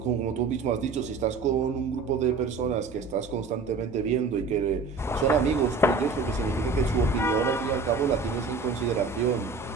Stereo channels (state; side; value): quieter; left; 4.4 dB